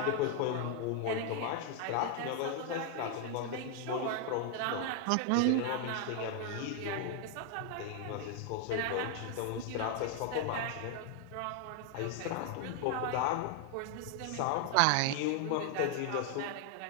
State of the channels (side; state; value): both; different; correlation 0.00